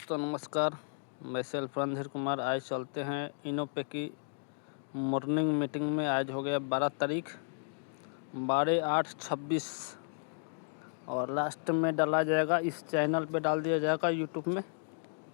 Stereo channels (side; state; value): right; silent; digital silence